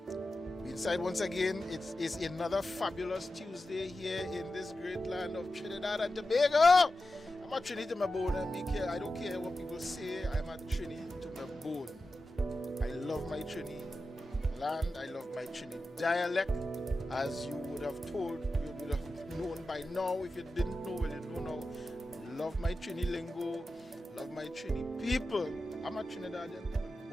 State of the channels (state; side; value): normal; both; correlation 0.92